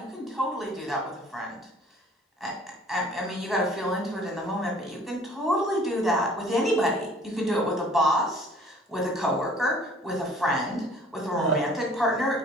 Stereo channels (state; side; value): normal; both; correlation 0.53